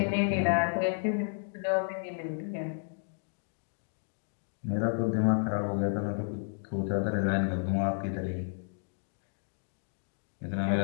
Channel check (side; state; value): right; silent; digital silence